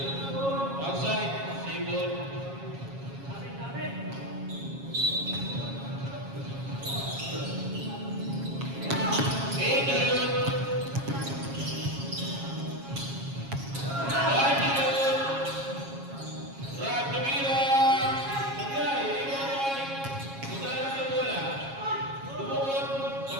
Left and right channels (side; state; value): left; late; 7.3 ms